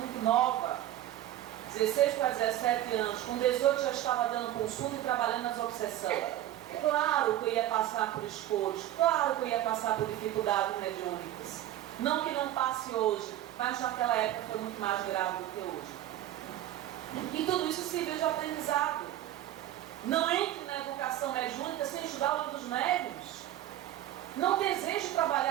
nova, 16 para 17 anos. Com 18 já estava dando consulta e trabalhando nas obsessões. Claro que eu ia passar por escolhas, claro que eu ia passar por dificuldades mediúnicas. Não que não passe hoje, mas naquela época foi muito mais grave do que hoje. E tudo isso serviu de aprendizado. Não entre na educação mediúnica sem estudar o livro dos médiuns. Não deseje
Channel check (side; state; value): left; quieter; 13.2 dB